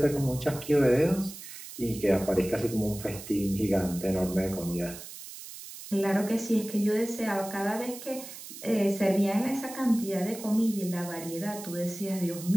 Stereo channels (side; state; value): right; noise; hiss, 13 dB below the sound